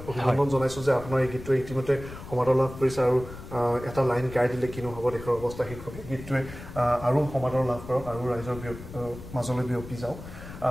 অভিনন্দন জনাইছোঁ যে আপোনাৰ এই গীতটোৱে ইতিমধ্যে সমাদৰ লাভ কৰিছে আৰু এটা লাইন গাই দিলে কিনো হ'ব দেশৰ অৱস্থা শীৰ্ষক এই গীতটোৱে আৰু সমাদৰ লাভ কৰক আৰু ৰাইজৰ মাজলৈ বিয়পি যাওক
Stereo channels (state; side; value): noise; left; rumble, 13 dB below the sound